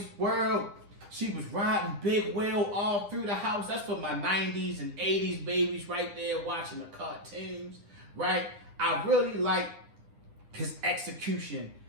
World. She was riding Big Will all through the house. That's for my 90s and 80s babies right there watching the cartoons, right? I really like his execution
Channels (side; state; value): left; late; 9.9 ms